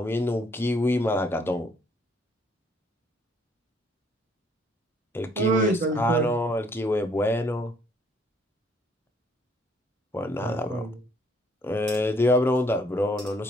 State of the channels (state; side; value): normal; both; correlation 0.64